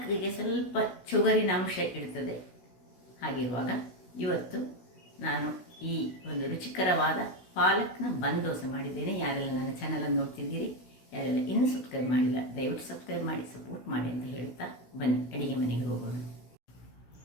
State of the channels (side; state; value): right; late; 16 ms